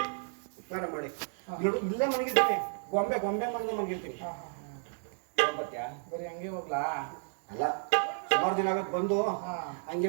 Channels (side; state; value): left; silent; 56 dB below the other